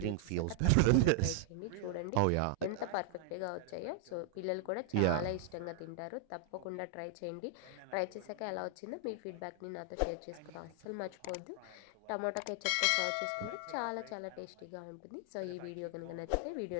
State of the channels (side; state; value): both; different; correlation 0.00